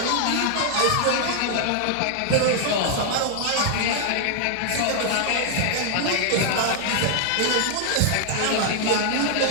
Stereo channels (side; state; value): both; different; correlation 0.00